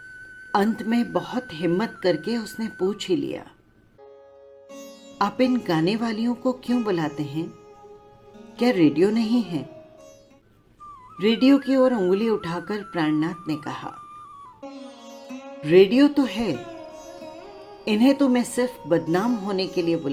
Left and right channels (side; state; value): both; identical; correlation 1.00